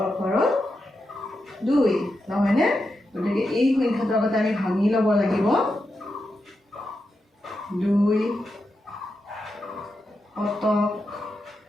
ঘৰত 2, নহয়নে? গতিকে এই সংখ্যাটো আগতে আমি ভাঙি ল'ব লাগিব। 2 শতক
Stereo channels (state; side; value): normal; both; correlation 0.87